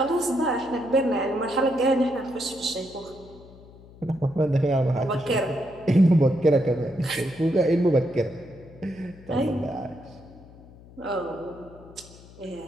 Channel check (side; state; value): left; noise; hum, 21 dB below the sound